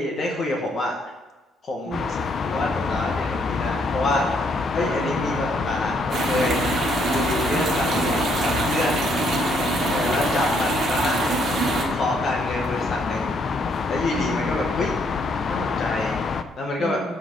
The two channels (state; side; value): normal; both; correlation 0.70